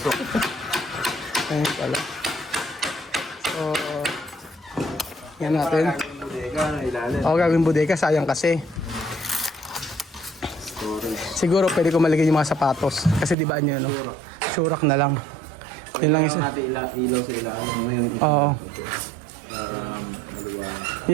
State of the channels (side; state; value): left; drops out; at 13.4 s